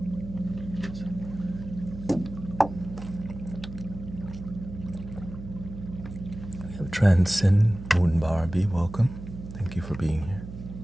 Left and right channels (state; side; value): noise; right; hum, 11 dB below the sound